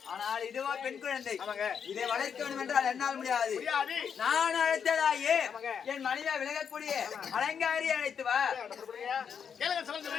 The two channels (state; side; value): quieter; right; 7.2 dB